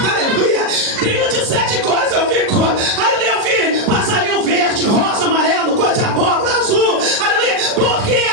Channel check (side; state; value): left; late; 40 ms